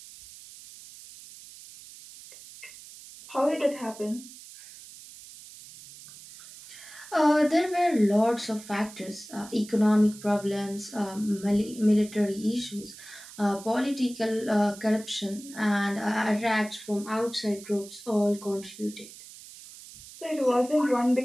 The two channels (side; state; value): right; noise; hiss, 17 dB below the sound